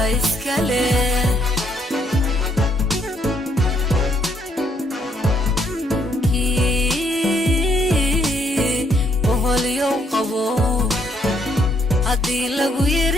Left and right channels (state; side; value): normal; both; correlation 0.71